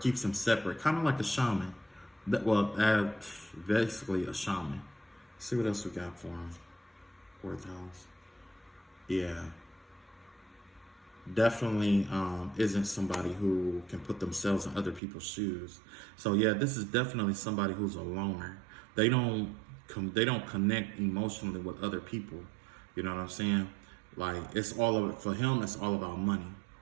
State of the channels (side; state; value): left; drops out; at 15.0 s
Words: him separate, kind of like a shaman. Basically a shaman. Let's see what else we got for him. 4th house. Yeah. Definitely isn't somebody who can put themselves in other people's shoes. So yeah, this is definitely somebody who's a loner. They don't connect emotionally with other people. You know what I'm saying? Like, for him, it's all about money.